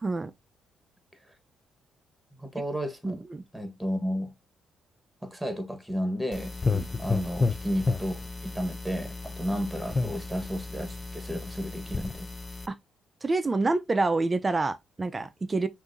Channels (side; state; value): both; normal; correlation 0.91